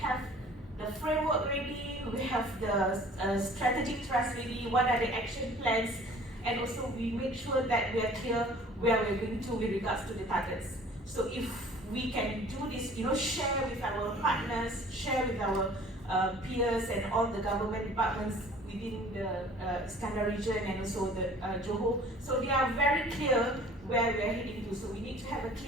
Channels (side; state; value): both; normal; correlation 0.49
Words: the framework ready, we have the strategic trust ready, what are the action plans, and also we make sure that we are clear where we're going to with regards to the targets. So if we can do this, share with our partners, share with our peers and all the government departments within the Iskandar region and also the Johor. So they are very clear where we're heading to. So we need to have a